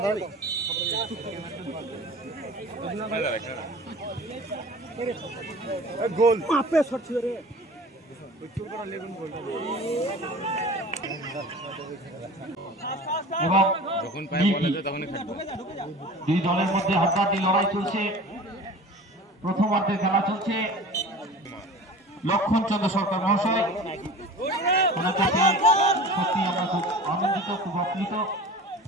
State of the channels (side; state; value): both; normal; correlation 0.39